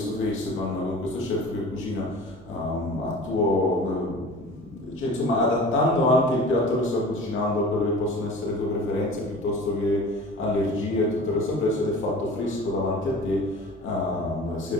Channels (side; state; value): both; normal; correlation 0.41